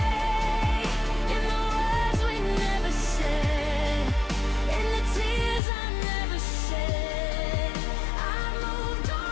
in the words we never said, in the tears I never shed. I moved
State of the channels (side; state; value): right; drops out; at 5.6 s